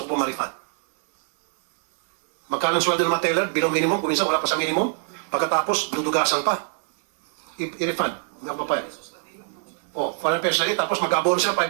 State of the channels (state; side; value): silent; left; 63 dB below the other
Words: ko po ma-refund. Magkano ang sweldo ng mga teller? Below minimum, kung minsan wala pa sa minimum. Pagkatapos, dudugasan pa. I-refund. Nga pa pa. $400 na rin, tapos mag-abono siya,